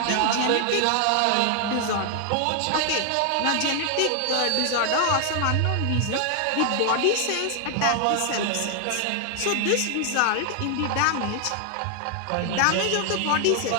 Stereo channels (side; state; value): both; different; correlation 0.00